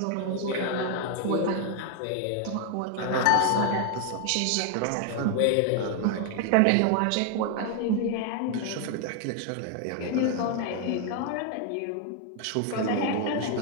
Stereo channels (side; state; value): both; different; correlation 0.00